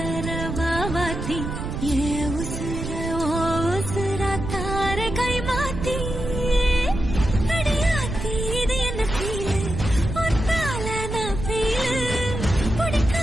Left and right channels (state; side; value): noise; right; rumble, 5 dB below the sound